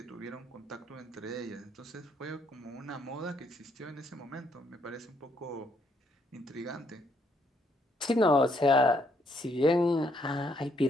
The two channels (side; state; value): both; normal; correlation 0.72